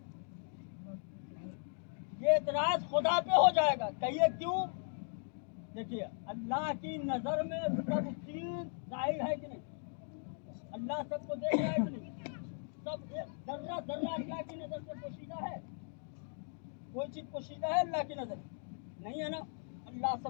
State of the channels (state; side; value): silent; right; 53 dB below the other